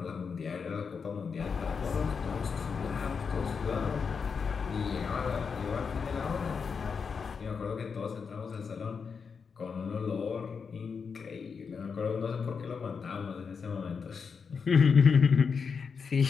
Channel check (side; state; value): right; quieter; 5.8 dB